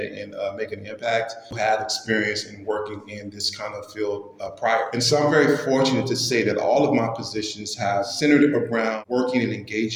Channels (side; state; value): both; identical; correlation 1.00